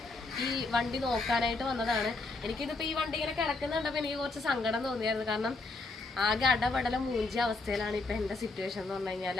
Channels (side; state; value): right; quieter; 3.5 dB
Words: ഈ വണ്ടി നോക്കാനായിട്ട് വന്നതാണ്. എനിക്കിതിപ്പോൾ ഈ വണ്ടി ഇങ്ങനെ കിടക്കുന്നുണ്ടപ്പോൾ എനിക്ക് കുറച്ച് സങ്കടം തോന്നിയായിരുന്നു. കാരണം ആകെ അടപടല മൂഞ്ചിയ അവസ്ഥയിലാണ് ഇപ്പം എൻ്റെ സിറ്റുവേഷൻ എന്ന് പറഞ്ഞു കഴിഞ്ഞാൽ.